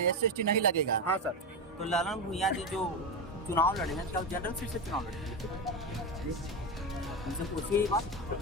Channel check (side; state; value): both; normal; correlation 0.14